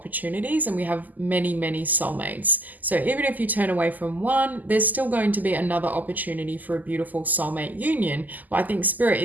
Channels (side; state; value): left; late; 0.082 ms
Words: and we have many, many soulmates. So even if you turn away from one, there's still going to be another opportunity for a beautiful soulmate union. But I think Spirit